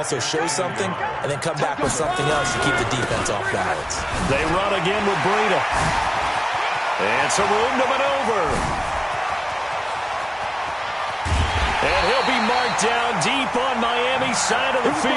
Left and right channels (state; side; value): identical; both; correlation 1.00